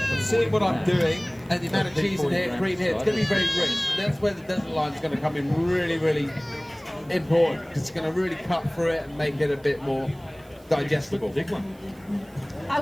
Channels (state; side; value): noise; right; hiss, 28 dB below the sound